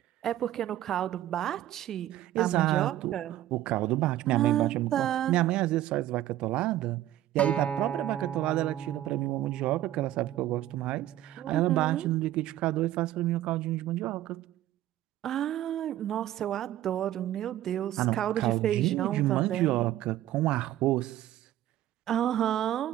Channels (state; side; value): quieter; left; 13.4 dB